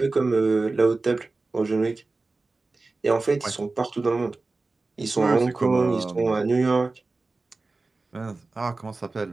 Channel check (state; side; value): quieter; left; 3.5 dB